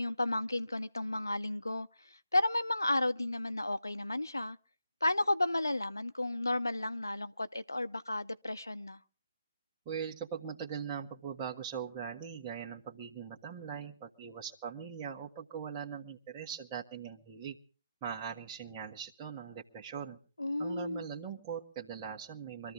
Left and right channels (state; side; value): inverted; both; correlation -0.84